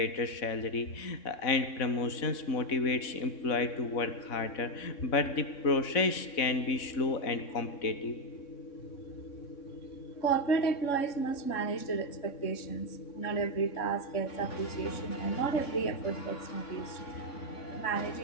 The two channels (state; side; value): late; right; 3.6 ms